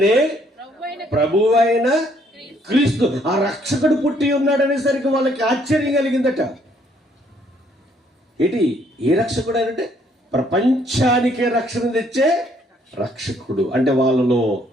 ప్రభువైన క్రీస్తు. ఆ రక్షకుడు పుట్టి ఉన్నాడు అనేసరికి వాళ్ళకి ఆశ్చర్యం కలిగిందట. ఏంటి ఏ రక్షకుడు అంటే? ప్రపంచానికే రక్షణ తెచ్చే రక్షకుడు. అంటే వాళ్ళలో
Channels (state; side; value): normal; both; correlation 0.66